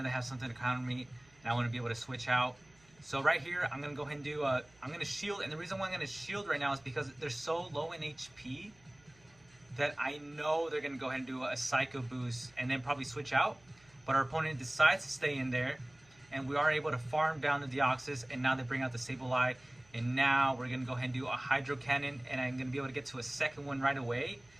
something to counter me and I want to be able to switch out. So right here, I'm gonna go ahead and do, I'm gonna shield, and the reason why I'm gonna shield right now is because they're so low in HP that I know they're gonna go ahead and do a Psycho Boost and then probably switch out. But our opponent decides to stay in there, and we are able to farm down the Deoxys, and now they bring out the Sableye, and now we're gonna go ahead and do a Hydro Cannon, and I'm gonna be able to get to a second one right away.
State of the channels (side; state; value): right; noise; hum, 29 dB below the sound